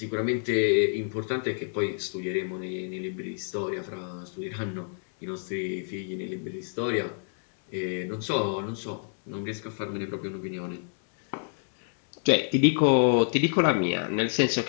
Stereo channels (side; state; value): right; silent; 59 dB below the other